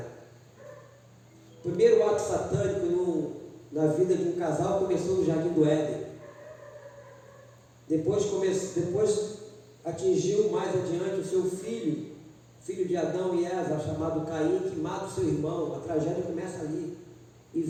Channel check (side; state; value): both; identical; correlation 1.00